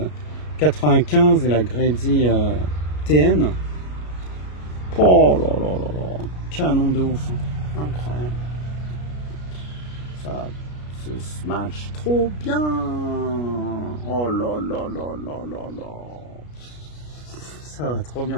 95 et la Grady TN. Oh là là là là. Canon de ouf. Incroyable. Ça se match trop bien. Oh là là là là là là. Ça va trop bien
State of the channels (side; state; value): right; late; 33 ms